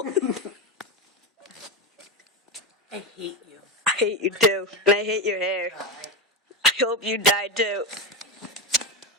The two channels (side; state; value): both; normal; correlation 0.14